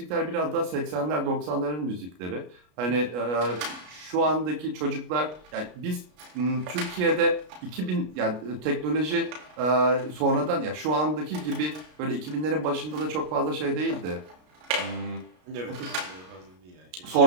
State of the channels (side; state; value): left; late; 33 ms